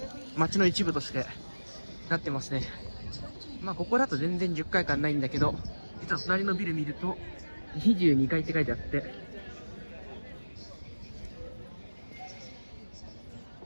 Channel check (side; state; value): both; inverted; correlation -1.00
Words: 街の一部としてなってますね。まあここだと全然10階感ないんだけど、実は隣のビル見ると22階って書いてあって、